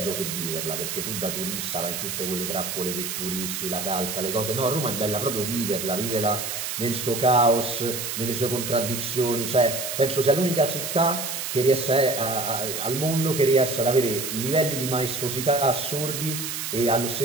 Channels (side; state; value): right; noise; hiss, 4 dB below the sound